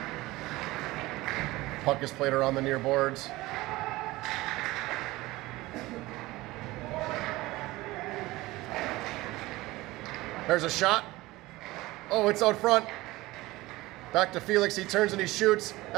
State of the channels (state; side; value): quieter; left; 19.4 dB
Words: Puck is played around the near boards. There's a shot. Oh, it's out front. Back to Felix. He turns and he shoots.